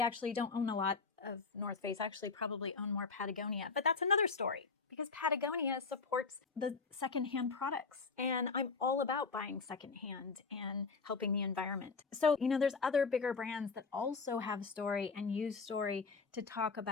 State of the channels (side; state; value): right; quieter; 4.6 dB